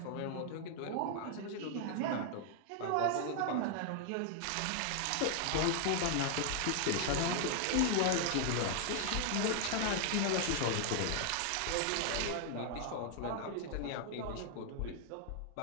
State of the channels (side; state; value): both; different; correlation 0.00